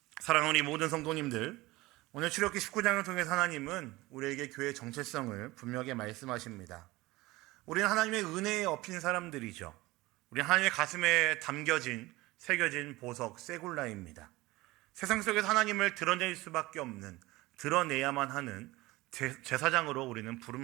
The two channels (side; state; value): left; quieter; 20.1 dB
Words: 사랑하는 우리 모든 성도님들, 오늘 출애굽기 19장을 통해서 하나님은 우리에게 교회의 정체성을 분명하게 말씀하십니다. 우리는 하나님의 은혜에 엎인 사람들이죠. 우리는 하나님의 가슴에 새겨진 보석, 세굴라입니다. 세상 속에서 하나님을 드러낼 수밖에 없는, 드러내야만 하는 제사장으로 우리는